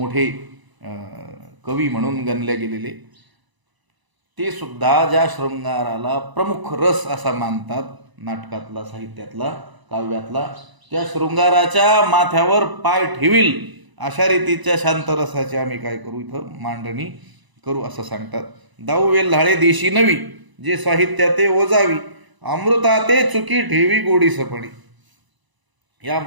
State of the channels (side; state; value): left; late; 1.0 ms